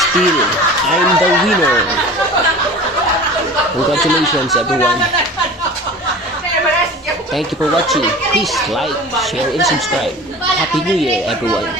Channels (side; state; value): both; normal; correlation 0.38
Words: still, I'm the winner. Congratulations everyone. Thank you for watching. Please like, share, and subscribe. Happy New Year